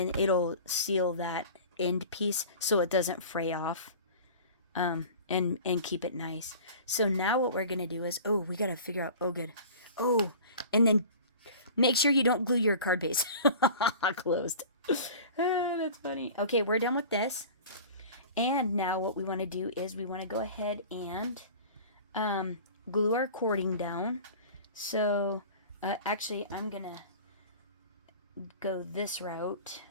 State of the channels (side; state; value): both; inverted; correlation -0.40